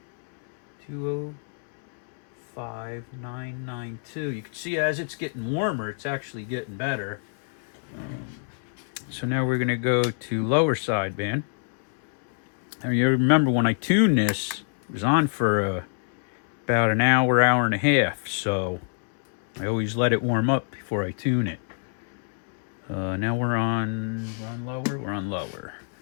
205,992. You can see as it's getting warmer, it's actually getting better. So now we're going to go to lower sideband. Now you remember when I tuned this, it was on for about an hour, hour and a half. So I always let it warm up before I tune it. Now we're on lower. We're on lower.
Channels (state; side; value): silent; right; 61 dB below the other